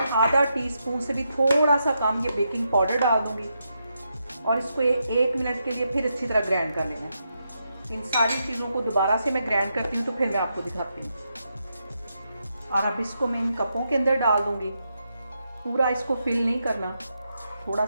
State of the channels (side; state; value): both; inverted; correlation -0.83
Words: आधा टीस्पून से भी थोड़ा सा कम ये बेकिंग पाउडर डाल दूँगी और इसको 1 मिनट के लिए फिर अच्छी तरह ग्राइंड कर लेना है। इन सारी चीज़ों को दोबारा से मैं ग्राइंड करती हूँ तो फिर मैं आपको दिखाती हूँ। और अब इसको मैं इन कपों के अंदर डाल दूँगी। पूरा इसको फिल नहीं करना, थोड़ा